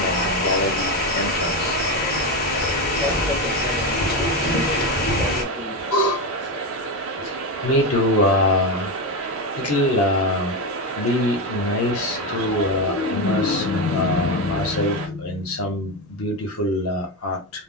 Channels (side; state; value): both; normal; correlation 0.13